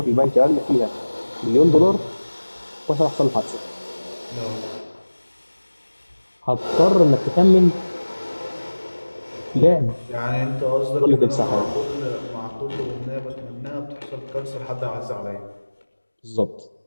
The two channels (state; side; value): inverted; both; correlation -1.00